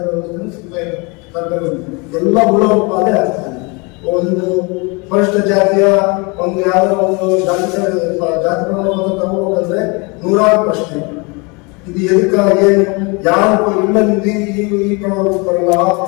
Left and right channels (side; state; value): right; quieter; 29.6 dB